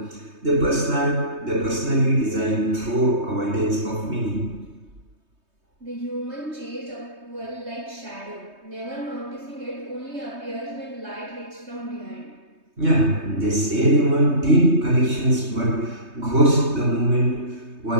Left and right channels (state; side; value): late; left; 3.2 ms